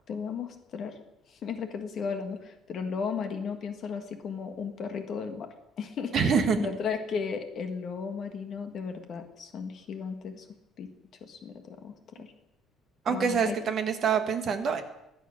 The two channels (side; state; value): both; normal; correlation 0.62